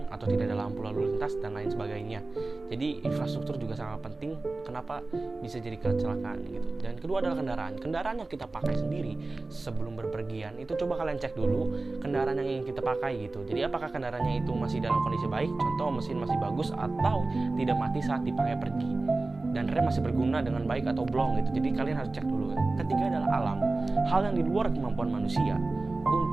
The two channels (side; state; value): left; quieter; 3.3 dB